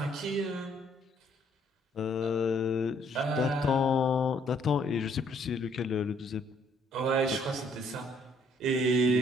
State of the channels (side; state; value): both; normal; correlation 0.65